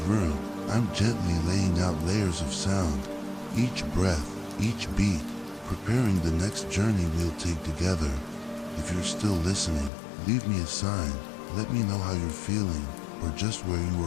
room, I'm gently laying out layers of sound, each breath, each beat, preparing the next journey we'll take together. If you're still listening, leave me a sign. Let me know how you're feeling or just where you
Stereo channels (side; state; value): right; drops out; at 9.9 s